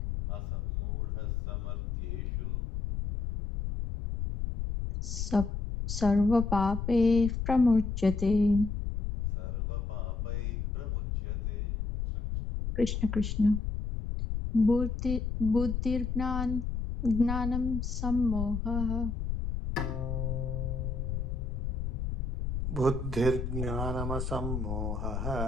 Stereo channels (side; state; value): left; noise; rumble, 3 dB below the sound